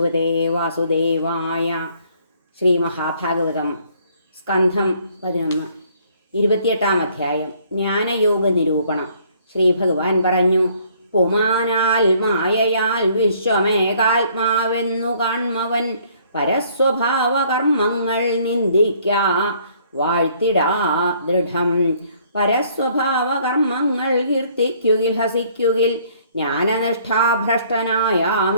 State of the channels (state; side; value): inverted; both; correlation -0.62